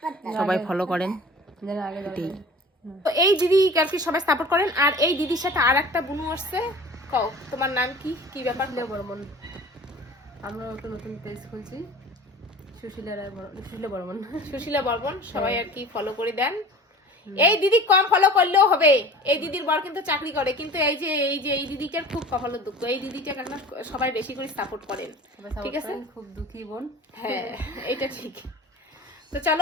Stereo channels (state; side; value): normal; both; correlation 0.41